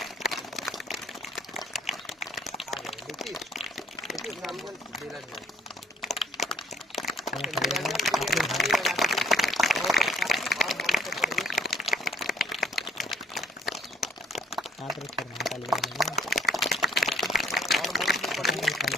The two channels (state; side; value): normal; both; correlation 0.61